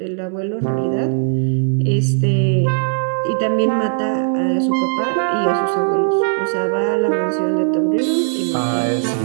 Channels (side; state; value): left; silent; digital silence